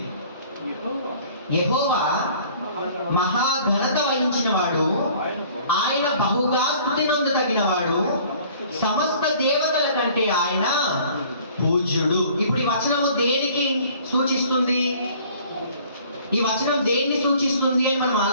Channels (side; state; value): both; inverted; correlation -0.53